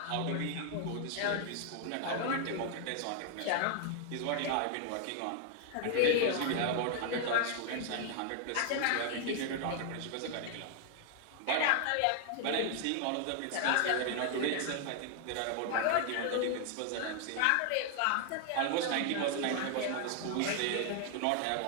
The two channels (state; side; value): different; both; correlation 0.00